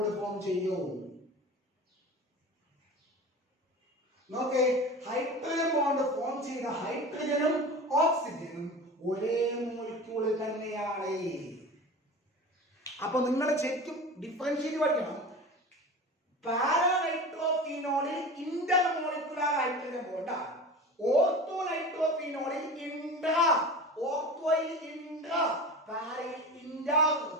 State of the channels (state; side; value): normal; both; correlation 0.33